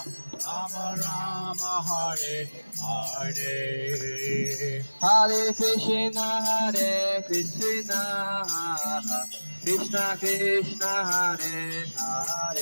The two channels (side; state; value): both; inverted; correlation -1.00